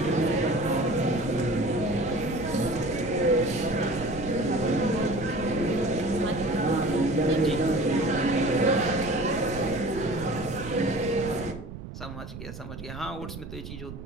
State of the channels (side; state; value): right; noise; rumble, 11 dB below the sound